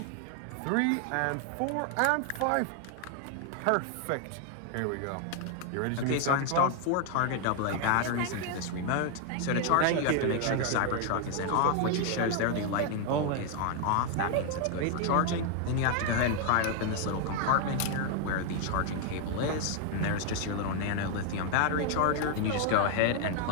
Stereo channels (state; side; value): different; both; correlation 0.00